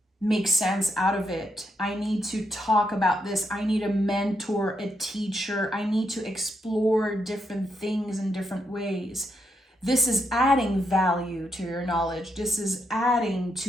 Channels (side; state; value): both; normal; correlation 0.80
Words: make sense out of it. I need to talk about this. I need a mentor, a teacher. I need to explore different things in different ways. This is adding value to your knowledge. This is adding